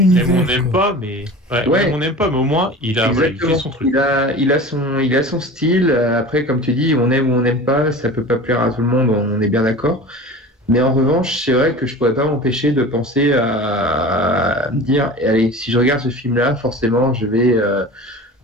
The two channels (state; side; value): normal; both; correlation 0.36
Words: On n'aime pas, mais on n'aime pas, mais au moins il fait son truc. Il a son style. Après, comme tu dis, on aime ou on n'aime pas, ça peut pas plaire à tout le monde, on est bien d'accord. Mais en revanche, c'est vrai que je pourrais pas m'empêcher de penser à me dire, allez, si je regarde ce film-là, forcément,